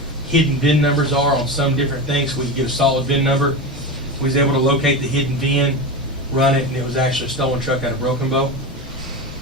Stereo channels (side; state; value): both; normal; correlation 0.21